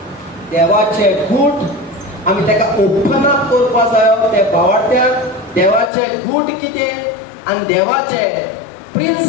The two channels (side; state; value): right; drops out; at 5.9 s